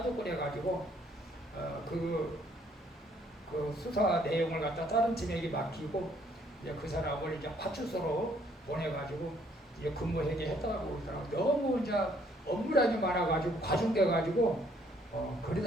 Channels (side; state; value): both; normal; correlation 0.65